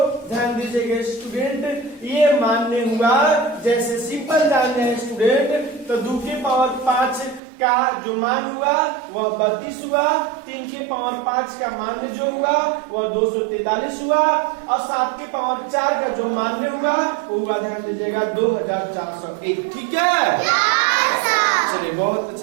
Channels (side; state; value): left; drops out; at 7.4 s